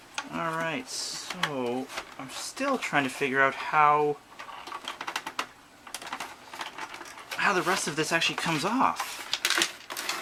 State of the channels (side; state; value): both; identical; correlation 1.00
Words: Alright, so I'm still trying to figure out how the rest of this actually comes off.